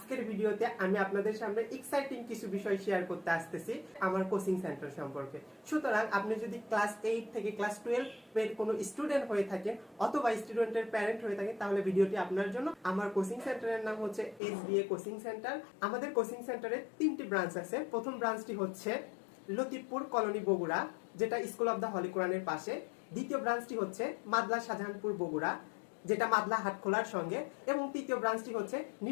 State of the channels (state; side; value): drops out; right; at 14.4 s